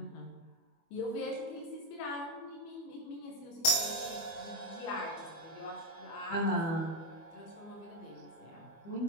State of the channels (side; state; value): right; late; 24 ms